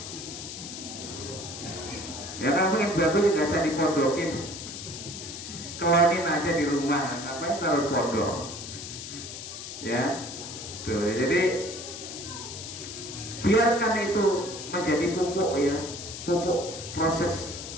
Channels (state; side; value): noise; left; hiss, 9 dB below the sound